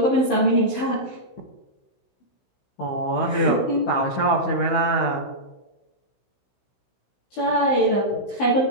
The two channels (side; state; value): right; late; 16 ms